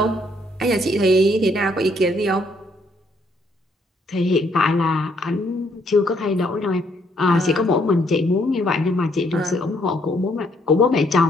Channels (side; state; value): both; normal; correlation 0.69